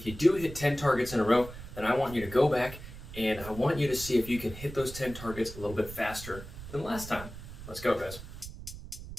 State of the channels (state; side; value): noise; right; rumble, 13 dB below the sound